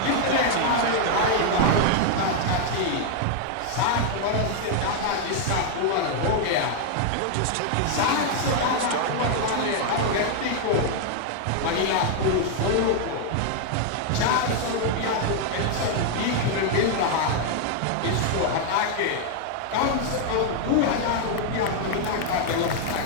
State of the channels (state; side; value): different; both; correlation 0.00